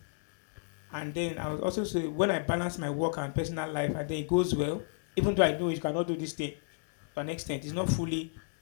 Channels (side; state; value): right; silent; digital silence